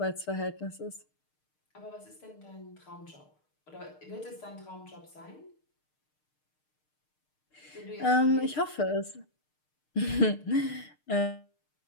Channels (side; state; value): right; late; 6.6 ms